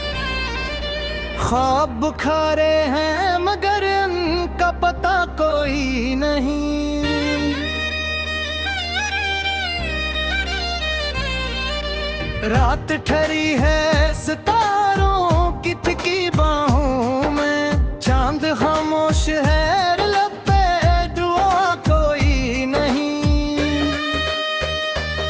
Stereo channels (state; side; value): identical; both; correlation 1.00